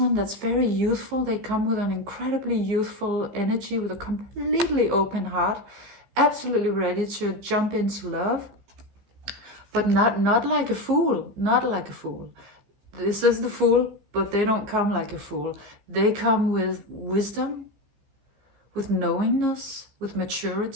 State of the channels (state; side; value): late; left; 15 ms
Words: that's very youthful. They come with an incredibly youthful energy, with a completely open heart, absolutely ready to jump into love, but not like a fool, not like a fool. This is the Fool, but they don't come like a fool. They come with wisdom, with knowingness, with